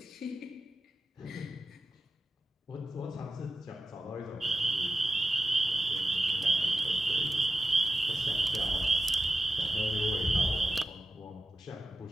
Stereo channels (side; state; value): both; normal; correlation 0.92